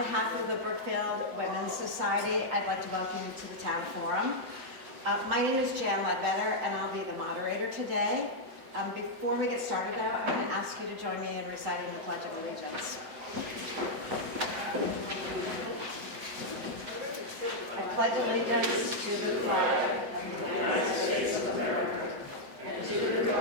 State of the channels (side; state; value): left; late; 7.7 ms